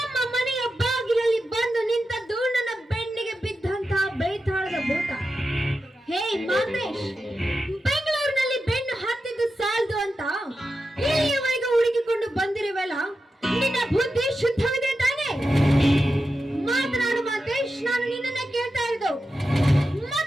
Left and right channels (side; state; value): both; normal; correlation 0.90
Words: ಮನೆಯ ಬಾಗಿಲಲ್ಲಿ ಬಂದು ನಿಂತದ್ದು ನನ್ನ ಬೆನ್ನಿಗೆ ಬಿದ್ದಂತಹ ಬೇತಾಳದ ಭೂತ. ಹೇ ಮಾತೇಶ್, ಬೆಂಗಳೂರಿನಲ್ಲಿ ಬೆನ್ನು ಹತ್ತಿದ್ದು ಸಾಲದು ಅಂತ ಇಲ್ಲಿಯವರೆಗೆ ಹುಡುಕಿಕೊಂಡು ಬಂದಿರುವಲ್ಲ, ನಿನ್ನ ಬುದ್ಧಿ ಶುದ್ಧವಿದೆ ತಾನೆ? ಮಾತನಾಡು ಮಾತೇಶ್, ನಾನು ನಿನ್ನನ್ನೇ ಕೇಳ್ತಾ ಇರೋದು.